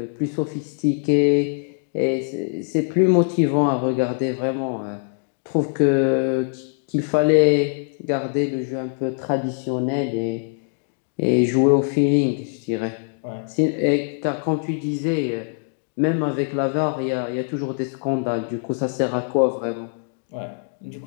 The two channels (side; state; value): right; silent; digital silence